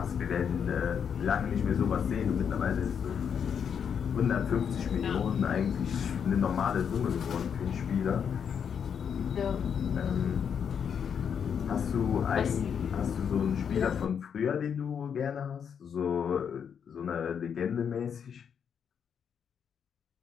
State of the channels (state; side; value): quieter; right; 7.5 dB